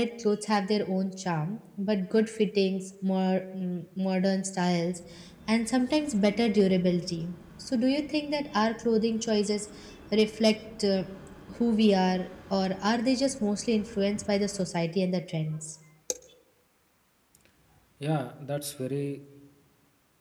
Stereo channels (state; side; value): identical; both; correlation 1.00